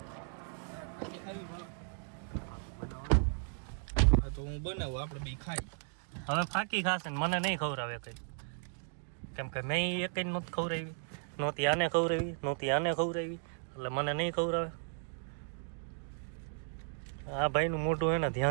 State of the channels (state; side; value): silent; left; 54 dB below the other